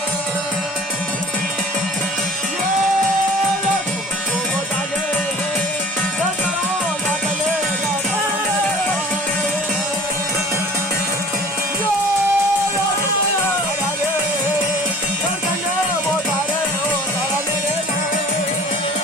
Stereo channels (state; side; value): normal; both; correlation 0.45